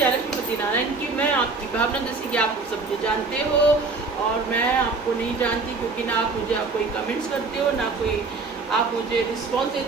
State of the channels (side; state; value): left; quieter; 4.1 dB